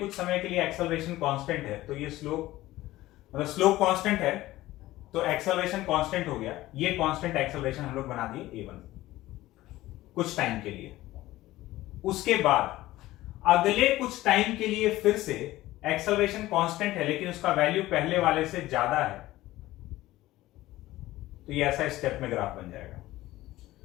समय के लिए एक्सेलरेशन कांस्टेंट है, तो ये स्लोप, मतलब स्लोप कांस्टेंट है, तो एक्सेलरेशन कांस्टेंट हो गया, ये कांस्टेंट एक्सेलरेशन हम लोग बना दिए a1 कुछ टाइम के लिए। उसके बाद अगले कुछ टाइम के लिए फिर से एक्सेलरेशन कांस्टेंट है लेकिन उसका वैल्यू पहले वाले से ज्यादा है, तो ये ऐसा स्टेप में ग्राफ बन जाएगा।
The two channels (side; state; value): right; quieter; 16.7 dB